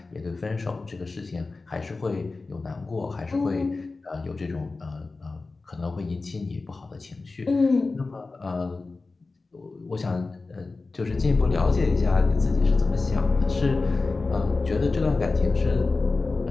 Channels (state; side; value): quieter; right; 3.7 dB